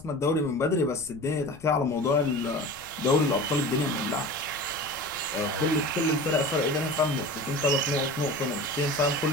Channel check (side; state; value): left; noise; rumble, 22 dB below the sound